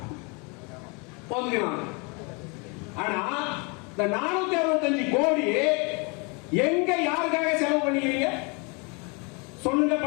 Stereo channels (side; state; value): right; quieter; 31.6 dB